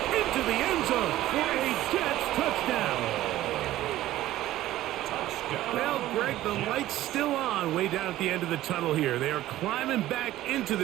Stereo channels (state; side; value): quieter; left; 14.8 dB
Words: into the end zone for a Jets touchdown. Well, Greg, the light's still on way down at the end of the tunnel here. They are climbing back into